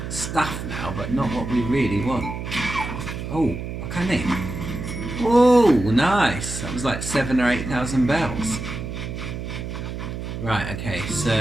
stuff now, but not what we really want. Oh, what can they? Oh, nice. That was like 7,000 or 8,000 bells. Right, okay, so...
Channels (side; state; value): right; noise; hum, 6 dB below the sound